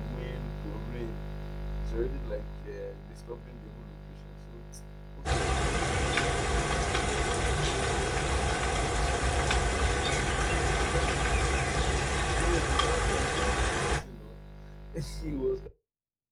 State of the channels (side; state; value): both; identical; correlation 1.00